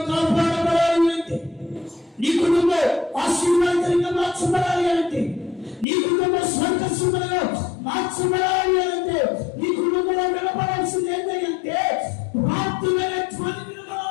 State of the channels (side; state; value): right; drops out; at 5.9 s